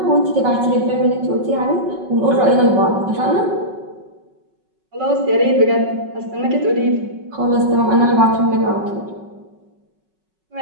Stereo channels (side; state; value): left; late; 5.4 ms